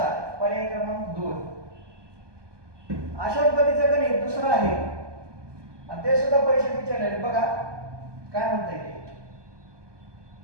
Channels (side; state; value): left; late; 1.2 ms